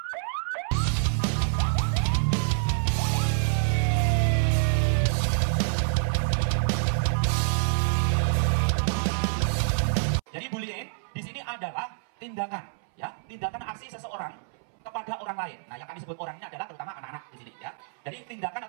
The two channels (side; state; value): left; silent; 60 dB below the other